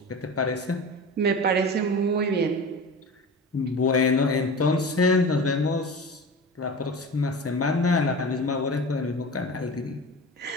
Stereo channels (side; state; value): both; normal; correlation 0.32